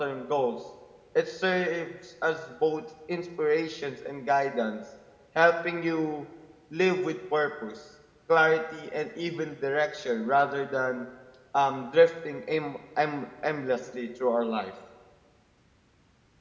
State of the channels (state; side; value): identical; both; correlation 1.00